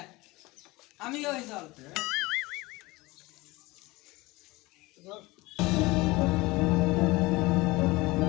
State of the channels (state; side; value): quieter; right; 21.9 dB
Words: আমি ওই চল